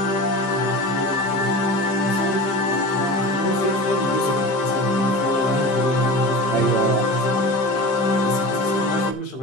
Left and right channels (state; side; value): late; right; 15 ms